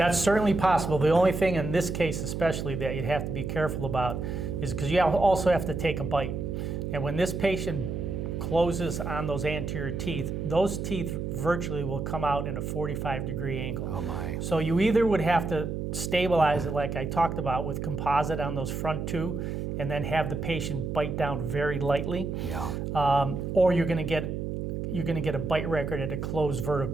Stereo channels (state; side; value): noise; right; hum, 3 dB below the sound